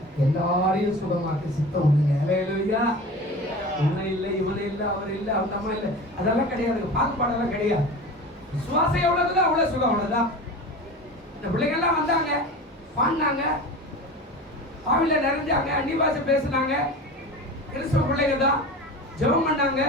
எல்லாரையும் சுகமாக்க சித்தம் உண்டுங்க. அல்லேலூயா. இவனை இல்லை, இவனை இல்லை, அவர் இல்லை, அவங்க அம்மா இல்லை, அதெல்லாம் கிடையாது. பாகுபாடெல்லாம் கிடையாது. விசுவாசம் எவ்வளவுதோ அவ்வளவு சுகம், அவ்வளவுதான். இந்த பிள்ளைங்கள்லாம் வந்தாங்க, பாடினாங்க, ஆவில நிறைஞ்சாங்க, அந்நிய பாஷை பேசினாங்க, கிறிஸ்துவ பிள்ளைங்க தான் ஜெபம் பண்ணாங்க,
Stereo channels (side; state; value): both; normal; correlation 0.33